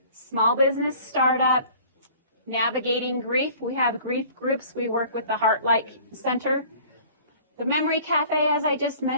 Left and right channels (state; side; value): inverted; both; correlation -0.49